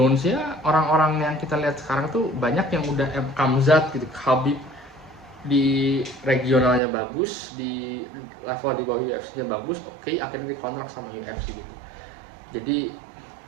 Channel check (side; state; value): left; drops out; at 6.8 s